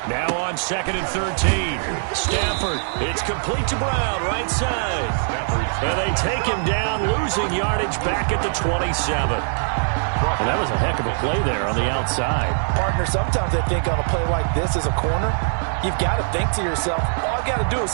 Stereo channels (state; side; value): silent; left; 64 dB below the other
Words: Now on 2nd and 13. Stafford. It's complete to Brown, right side. And they take him down, losing yardage back at the 27. And that was a heck of a play there on the outside. Partner, sometimes I think on a play like this as a corner, you've got to think to yourself, all I've got to do is